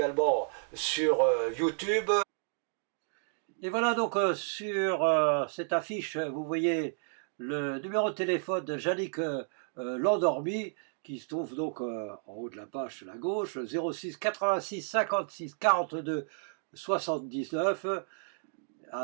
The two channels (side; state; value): left; silent; digital silence